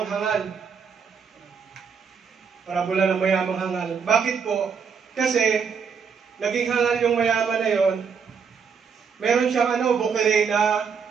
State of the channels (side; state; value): left; quieter; 6.2 dB